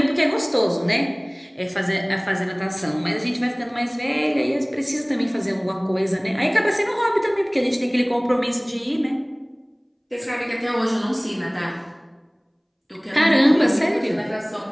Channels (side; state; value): both; identical; correlation 1.00